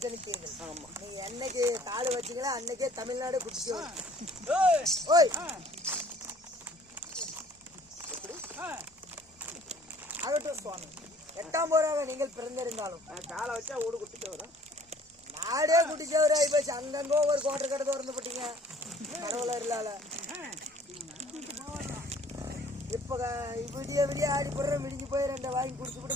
ஜனித்தீர்கள். ஆமா, நீங்க என்னைக்கு காடு வச்சீங்களா அன்னைக்கே தமிழ்நாடு குடிச்சு ஓய் ஆகட்டும் சுவாமி. 8ஆம் போராக நீங்கள் பிறந்திருந்தாலும் நான் காலை வச்சா ஓடு குட்டிட்டு வரேன். நாடே குடிச்சவராய் போச்சு. அங்கங்க ஒரு கோட்டை கடை திறந்து போட்டீங்க கடவுளர் இல்லால. இப்ப விடிய விடிய ஆடி போடுற விடிஞ்சு போய் 2 வாங்கி குடிச்சு கூட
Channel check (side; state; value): both; normal; correlation 0.55